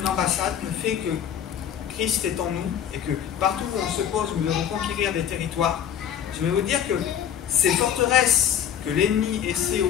une ambassade, le fait que Christ est en nous et que partout où on se pose, nous devons conquérir des territoires. Je vais vous dire que ces forteresses que l'ennemi essaie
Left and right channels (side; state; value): right; quieter; 9.4 dB